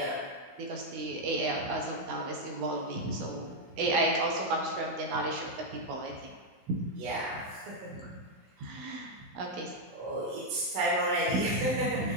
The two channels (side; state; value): left; late; 16 ms